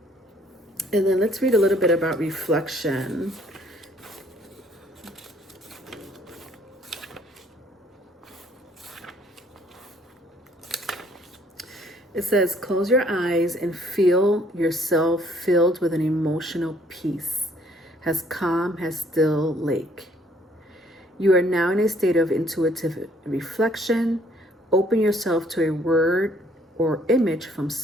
And then let's read a little bit about reflection. It says, close your eyes and feel yourself filled with an emotional peace, as calm as still lake. You are now in a state of intuitive reflection. Open yourself to a word or image from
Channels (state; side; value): normal; both; correlation 0.62